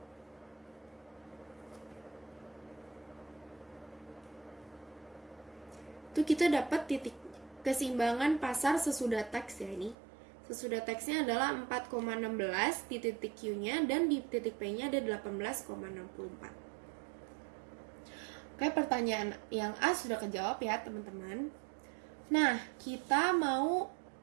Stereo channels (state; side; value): drops out; left; at 10.0 s